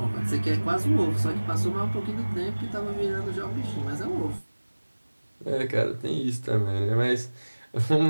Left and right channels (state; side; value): inverted; both; correlation -1.00